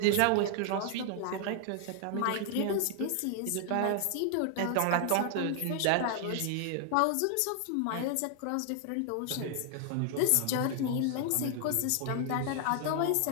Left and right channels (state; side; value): different; both; correlation 0.00